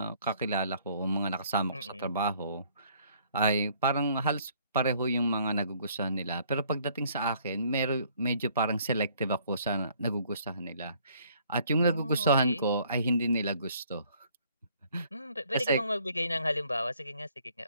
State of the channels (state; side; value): inverted; both; correlation -0.62